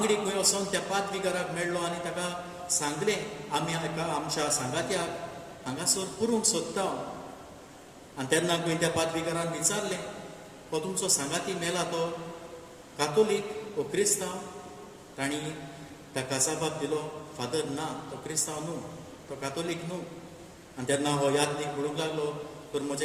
खंय वचोन त्या पाद्रीगाराक मेळ्ळो आनी ताका सांगलें, आमी आमच्या सांगात्याक हांगासर पुरूंक सोदता. आनी तेन्ना खंय त्या पाद्रीगारान विचारलें, हो तुमचो सांगाती मेला तो कातोलीक वो क्रिस्तांव? तांणी ताका जबाब दिलो, फादर ना, तो क्रिस्तांव न्हू, तो कातोलीक न्हू. आनी तेन्ना हो यादनीक म्हणूंक लागलो, तर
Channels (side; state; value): both; identical; correlation 1.00